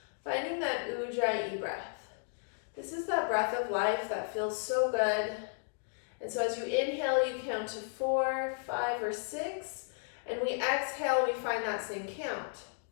finding that Ujjayi breath. This is that breath of life that feels so good. And so as you inhale, you count to 4, 5, or 6, and we exhale, we find that same count.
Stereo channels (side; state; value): right; silent; digital silence